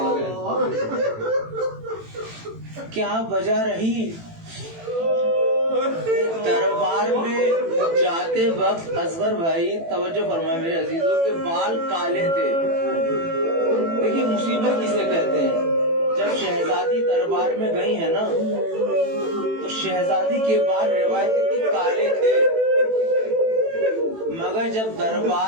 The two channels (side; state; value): left; late; 18 ms